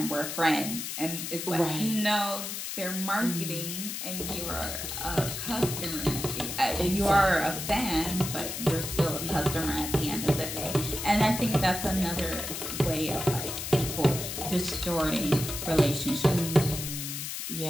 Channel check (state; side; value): noise; left; hiss, 5 dB below the sound